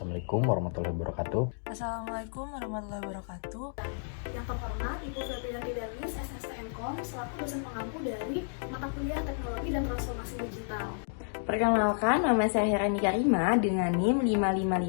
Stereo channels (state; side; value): silent; right; digital silence